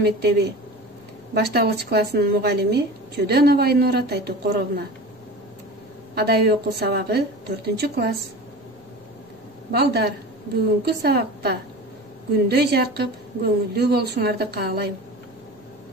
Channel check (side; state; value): both; normal; correlation 0.34